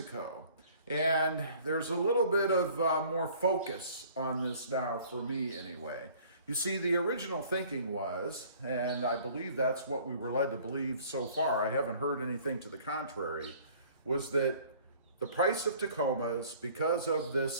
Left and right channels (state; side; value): inverted; both; correlation -0.53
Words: And there's a little bit of more focus on this now for me anyway. You see, the original thinking was, and I believe that's what we were led to believe so far, I haven't heard anything to the contrary, was that the price of Tacomas, because of